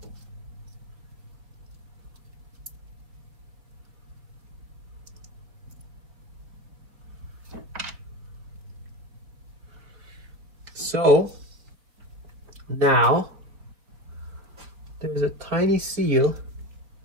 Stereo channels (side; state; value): left; late; 4.5 ms